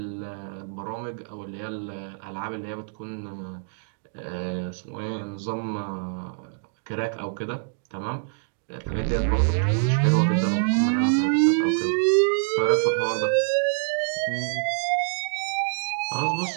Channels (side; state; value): left; silent; digital silence